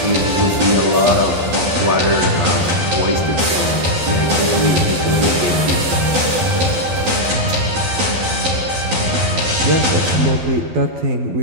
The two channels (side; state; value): left; late; 12 ms